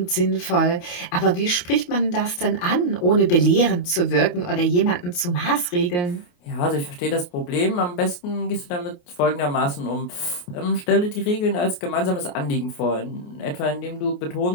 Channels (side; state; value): right; late; 28 ms